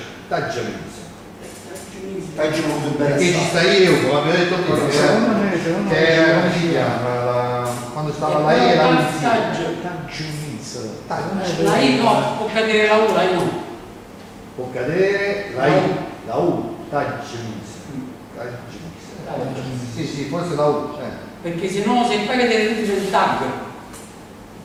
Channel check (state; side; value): identical; both; correlation 1.00